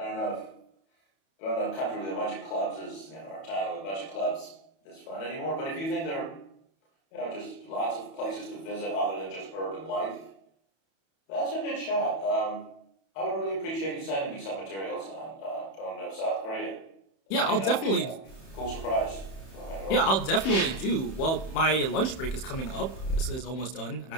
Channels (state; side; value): late; right; 31 ms